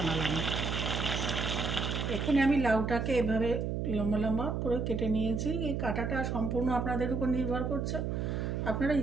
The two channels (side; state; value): right; noise; hum, 1 dB below the sound